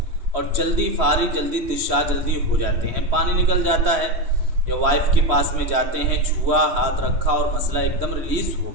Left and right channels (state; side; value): late; left; 3.1 ms